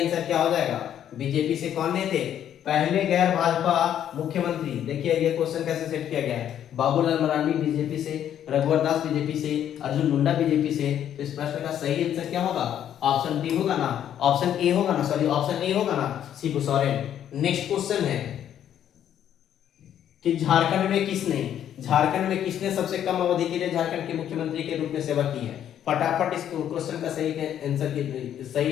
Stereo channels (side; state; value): right; quieter; 10.2 dB